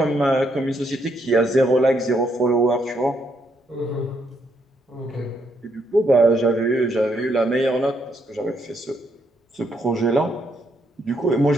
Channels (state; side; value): normal; both; correlation 0.75